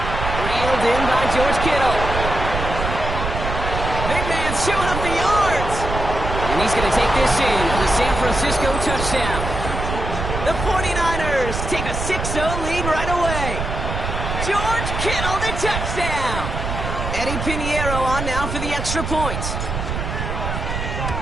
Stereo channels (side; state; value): right; noise; rumble, 4 dB below the sound